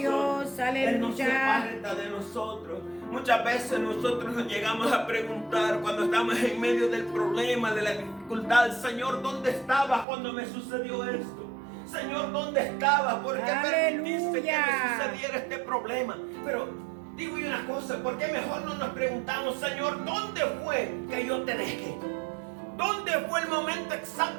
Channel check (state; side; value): drops out; left; at 10.1 s